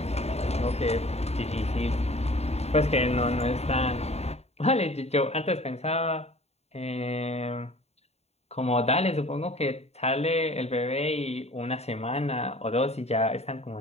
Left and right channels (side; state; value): right; late; 0.31 ms